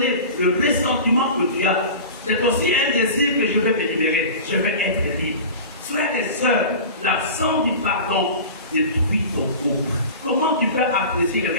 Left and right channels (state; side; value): inverted; both; correlation -0.35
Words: le ressentiment que tu as. C'est aussi un désir que je vais me libérer. Je vais être libre. Frères et sœurs, l'absence du pardon détruit ton couple. Comment tu peux apprécier le